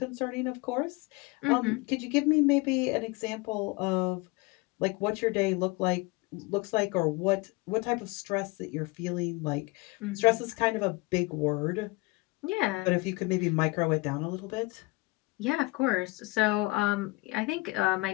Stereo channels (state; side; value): quieter; right; 24.4 dB